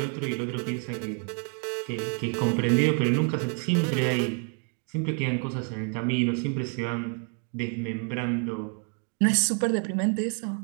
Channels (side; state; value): left; quieter; 37.5 dB